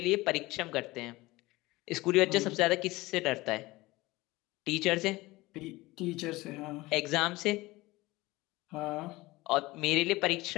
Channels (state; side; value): quieter; right; 20.3 dB